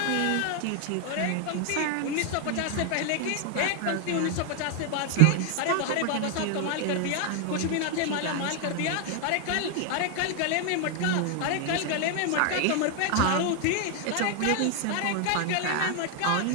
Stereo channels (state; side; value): different; both; correlation 0.00